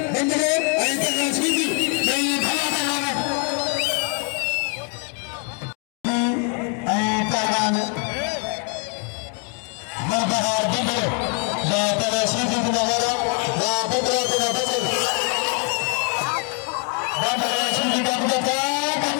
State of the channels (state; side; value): quieter; right; 37.5 dB